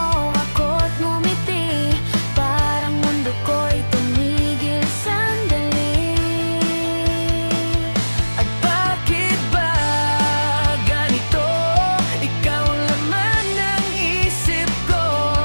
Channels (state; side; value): inverted; both; correlation -1.00